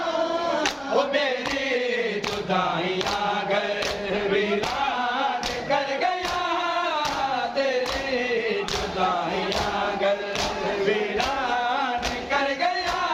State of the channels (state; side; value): identical; both; correlation 1.00